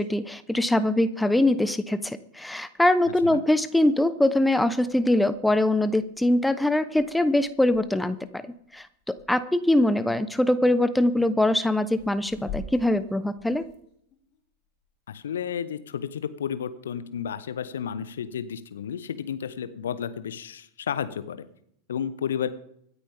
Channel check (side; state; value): both; normal; correlation 0.82